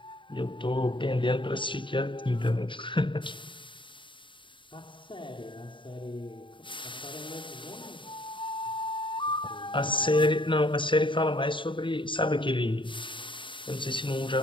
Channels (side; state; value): right; late; 0.24 ms